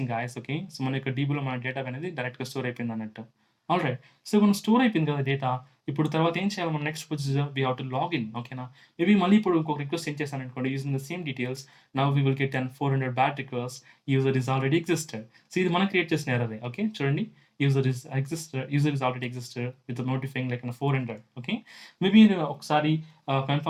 guys. Okay, so మన యొక్క డీబీలో మన data అనేది డైరెక్ట్గా స్టోర్ అయిపోయింది అన్నట్టు. ఆల్ రైట్, సో మనం స్టోర్ అయిపోయింది కదా డేటా. ఇప్పుడు తర్వాత ఏం చేయాలి? మన next procedure we have to login. ఓకేనా, మేబీ మళ్ళీ ఇప్పుడు ఇంకొక రిక్వెస్ట్ సెండ్ చేశాను అనుకోండి using the same details. Now we will get 400 bad request. User is already existed. So ఇది మనం క్రియేట్ చేసిన ఎర్రరే. ఓకే, చూడండి, user is already existed with the notifying like 400. Okay, maybe ఒకసారి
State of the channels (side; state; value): both; identical; correlation 1.00